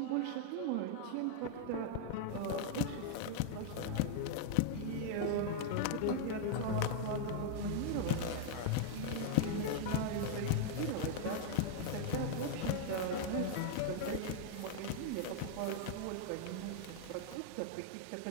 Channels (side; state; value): both; different; correlation -0.01